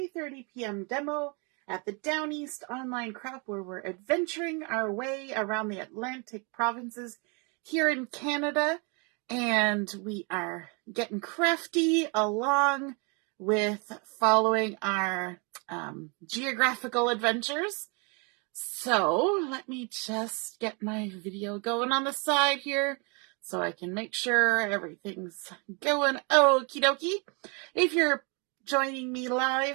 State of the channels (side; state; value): left; quieter; 33.3 dB